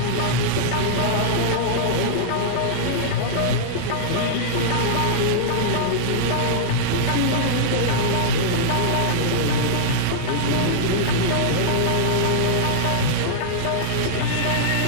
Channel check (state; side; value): different; both; correlation -0.02